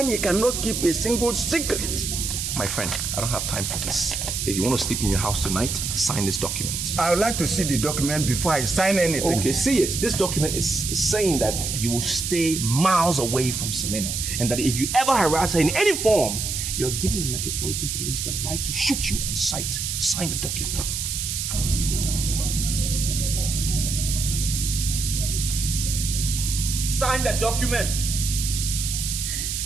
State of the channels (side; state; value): right; noise; hiss, 3 dB below the sound